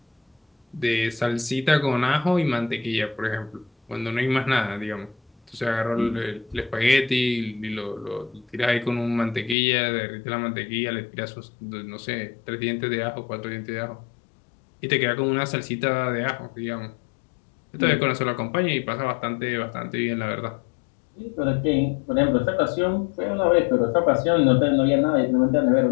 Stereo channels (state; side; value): drops out; right; at 9.6 s